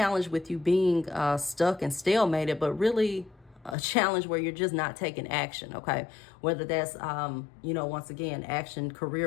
with you being stuck and stalemated, but really a challenge where you're just not taking action. Okay, whether that's once again, action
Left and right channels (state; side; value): drops out; right; at 3.8 s